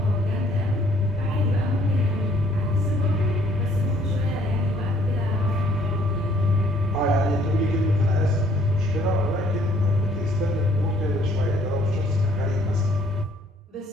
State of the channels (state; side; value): normal; both; correlation 0.62